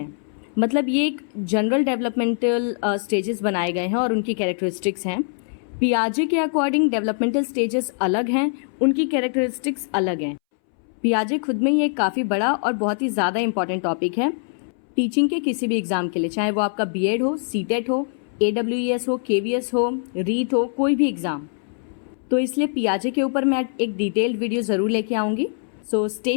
मतलब ये एक जनरल डेवलपमेंटल स्टेजेस बनाए गए हैं और उनकी कैरेक्टरिस्टिक्स हैं। पियाजे के अकॉर्डिंग डेवलपमेंटल स्टेजेस अलग हैं, उनकी कैरेक्टरिस्टिक्स अलग हैं। पियाजे खुद में ही एक काफ़ी बड़ा और बहुत ही ज़्यादा इंपॉर्टेंट टॉपिक है टीचिंग के किसी भी एग्ज़ाम के लिए, चाहे वो आपका बीएड हो, सीटेट हो, AWES हो, KVS हो, रीट हो, कोई भी एग्ज़ाम। तो इसलिए पियाजे के ऊपर मैं एक डिटेल्ड वीडियो ज़रूर लेके आऊँगी। So stay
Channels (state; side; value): silent; right; 63 dB below the other